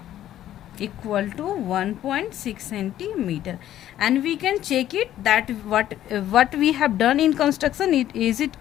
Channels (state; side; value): quieter; right; 12.3 dB